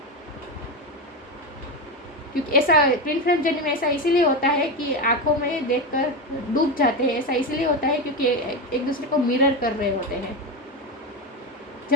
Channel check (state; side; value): normal; both; correlation 0.15